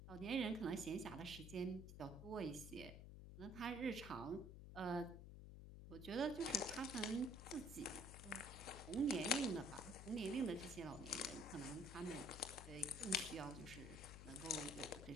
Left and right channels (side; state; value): left; noise; hum, 11 dB below the sound